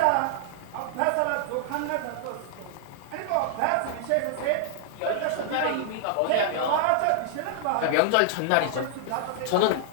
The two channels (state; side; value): different; both; correlation -0.01